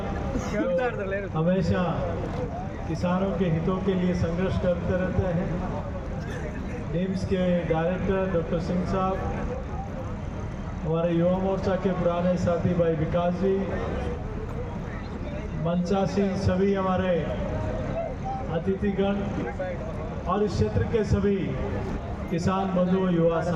हमेशा किसानों के हितों के लिए संघर्ष करते रहते हैं, निम्स के डायरेक्टर डॉक्टर सिंह साहब, हमारे युवा मोर्चा के पुराने साथी भाई विकास जी, मंचासी सभी हमारे अतिथिगण और इस क्षेत्र के सभी किसान बंधु युवा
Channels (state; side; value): identical; both; correlation 1.00